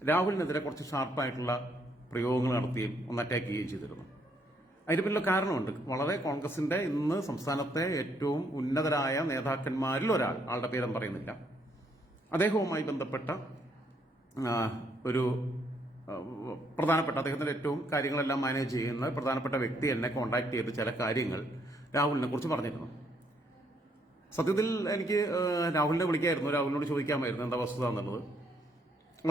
രാഹുലിനെതിരെ കുറച്ച് ഷാർപ്പായിട്ടുള്ള പ്രയോഗങ്ങൾ നടത്തുകയും ഒന്ന് അറ്റാക്ക് ചെയ്യുകയും ചെയ്തിരുന്നു. അതിന് പിന്നിൽ കാരണമുണ്ട്. വളരെ കോൺഗ്രസിന്റെ ഇന്ന് സംസ്ഥാനത്തെ ഏറ്റവും ഉന്നതരായ നേതാക്കന്മാരിൽ ഒരാൾ, ആളുടെ പേരും പറയുന്നില്ല, അദ്ദേഹവുമായി ബന്ധപ്പെട്ട ഒരു പ്രധാനപ്പെട്ട, അദ്ദേഹത്തിന്റെ ഏറ്റവും കാര്യങ്ങളെല്ലാം മാനേജ് ചെയ്യുന്ന പ്രധാനപ്പെട്ട വ്യക്തി എന്നെ കോൺടാക്ട് ചെയ്ത് ചില കാര്യങ്ങൾ രാഹുലിനെ കുറിച്ച് പറഞ്ഞിരുന്നു. സത്യത്തിൽ എനിക്ക് രാഹുലിനെ വിളിക്കായിരുന്നു, രാഹുലിനോട് ചോദിക്കാമായിരുന്നു എന്താ വസ്തുത എന്നുള്ളത്.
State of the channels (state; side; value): normal; both; correlation 0.71